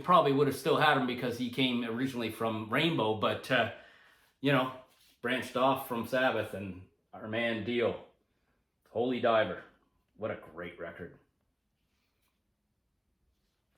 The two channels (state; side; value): identical; both; correlation 1.00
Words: would have still had him because he came originally from Rainbow, but, you know, branched off from Sabbath, and our man Dio, Holy Diver. What a great record.